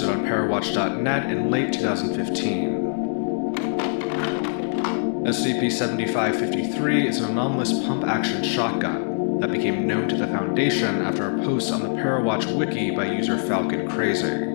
on Parawatch.net in late 2015. SCP-7553 is an anomalous pump-action shotgun that became known to the Foundation after a post on the Parawatch Wiki by user Falcon Crazy.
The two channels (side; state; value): right; silent; 63 dB below the other